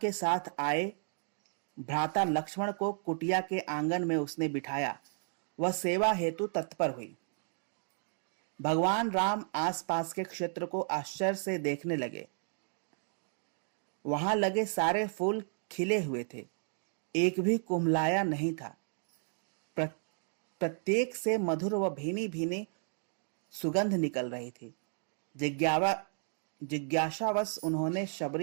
साथ आए भ्राता लक्ष्मण को कुटिया के आंगन में उसने बिठाया। वह सेवा हेतु तत्पर हुई। भगवान राम आसपास के क्षेत्र को आश्चर्य से देखने लगे। वहां लगे सारे फूल खिले हुए थे, एक भी कुम्हलाया नहीं था। प्रत्येक से मधुर व भीनी भीनी सुगंध निकल रही थी। जिज्ञासावश उन्होंने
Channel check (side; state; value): left; silent; 55 dB below the other